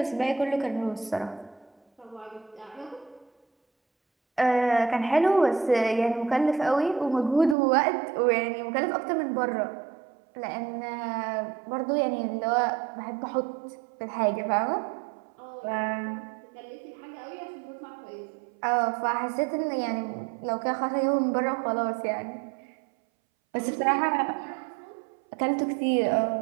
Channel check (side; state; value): left; drops out; at 7.6 s